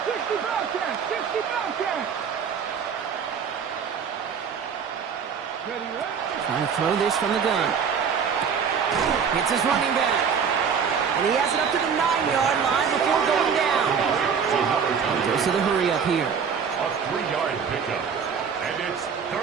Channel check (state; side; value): quieter; left; 6.7 dB